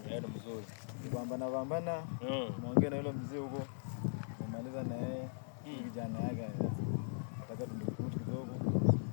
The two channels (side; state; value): right; silent; digital silence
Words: Ndio mzuri. Pambana. Muongee na yule mzee huko. Kumaliza na yeye. Kijana yake. Nataka tumdukute kidogo.